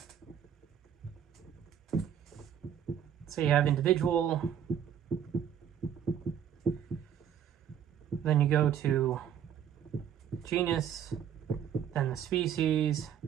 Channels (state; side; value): quieter; left; 9.1 dB